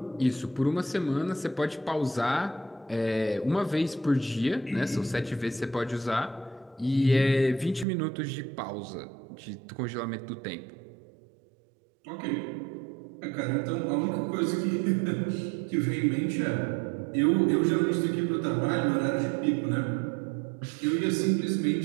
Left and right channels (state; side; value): drops out; left; at 7.9 s